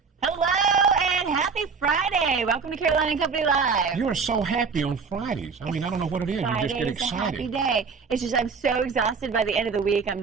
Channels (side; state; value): left; quieter; 5.3 dB